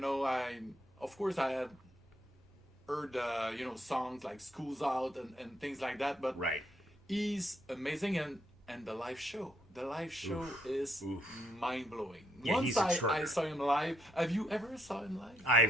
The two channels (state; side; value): normal; both; correlation 0.75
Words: had heard songs like School's Out and things like that, but he's amazing, and the live show is mind-blowing. Yeah, Once I saw him live. Have you ever saw him live?